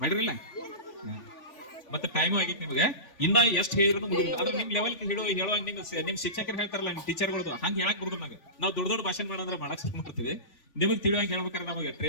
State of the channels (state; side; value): late; right; 3.4 ms